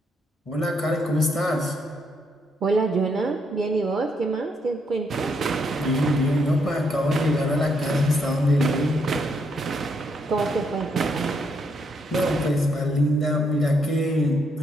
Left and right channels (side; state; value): both; normal; correlation 0.75